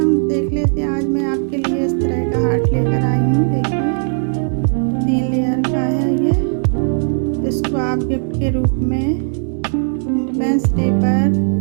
देख लेते हैं। आज मैं आपके लिए इस तरह का हार्ट लेकर आई हूँ। देखिए 3 लेयर का है ये। इसको आप गिफ्ट के रूप में इंडिपेंडेंस डे पर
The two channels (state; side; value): silent; left; 67 dB below the other